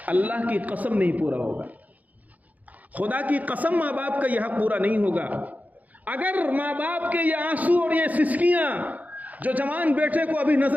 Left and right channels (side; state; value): left; late; 0.077 ms